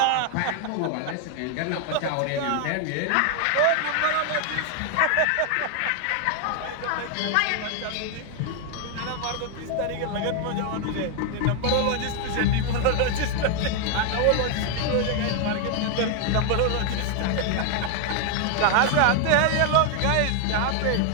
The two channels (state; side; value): different; both; correlation 0.00